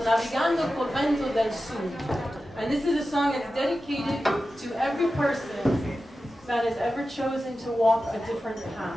Navigando Cu Vento del Sud. And this is a song that's dedicated to every person that has ever chosen to walk a different path.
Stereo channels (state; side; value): normal; both; correlation 0.93